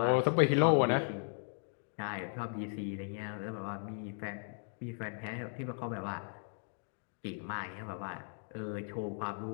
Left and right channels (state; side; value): silent; right; 53 dB below the other